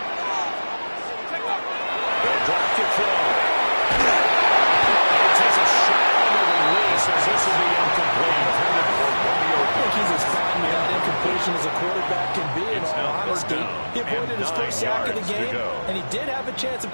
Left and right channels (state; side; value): inverted; both; correlation -1.00